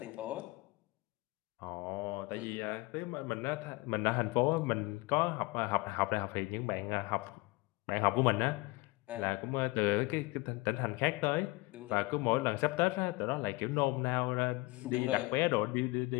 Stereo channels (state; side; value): quieter; right; 23.6 dB